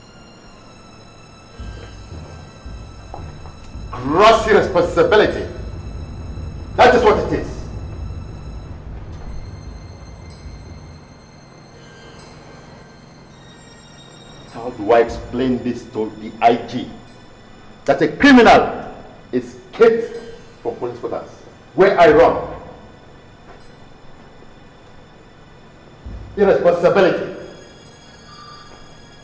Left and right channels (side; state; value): both; identical; correlation 1.00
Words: Gross irresponsibility. That is what it is. How do I explain this to the IG? That a criminal escaped from police quarters where I run. Irresponsibility.